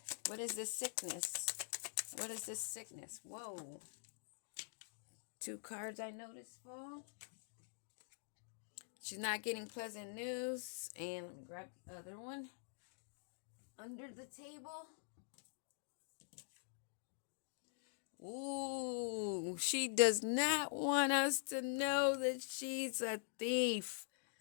What is this sickness? What is this sickness? Whoa. 2 cards I noticed fall. She's not getting pleasant news. And let me grab the other one. Under the table. Ooh, she does not want us to know that she's a thief.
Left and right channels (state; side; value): silent; right; digital silence